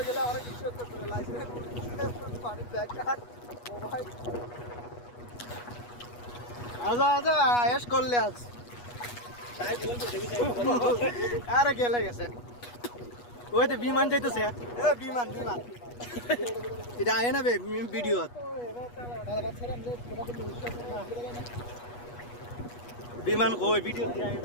গেলে অনেক কিছু করতে হবে লাইসেন্স পানি ব্যাগ কার্ড মোবাইল আজা আয়েশ করলে আজ তাই বলতে দেবি আরে গেলে গেছে ওই তো বিমান যাইতেছে এ বিমান এটা আয় না বে ভিডিও বিমান কই ভিডিও দিয়ে আয়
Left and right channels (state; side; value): late; right; 8.3 ms